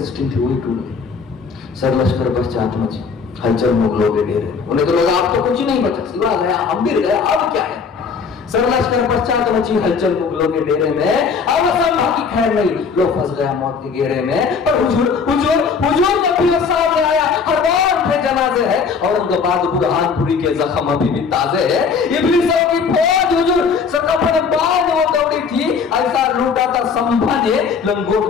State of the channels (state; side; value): quieter; right; 5.6 dB